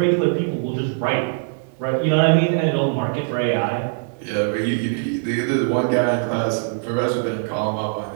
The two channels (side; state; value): left; silent; digital silence